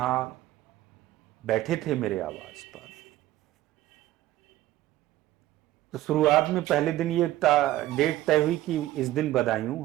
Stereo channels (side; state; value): left; quieter; 15.1 dB